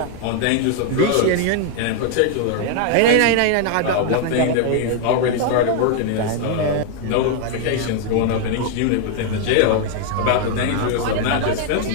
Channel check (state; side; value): different; both; correlation 0.00